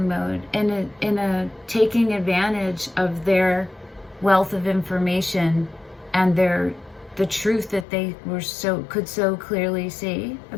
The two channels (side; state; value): right; drops out; at 7.9 s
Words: mode, in a taking advantage of their wealth of information and the truth that they could so clearly see